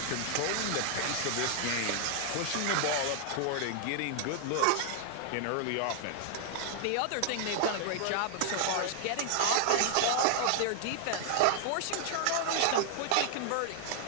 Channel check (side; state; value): both; different; correlation 0.00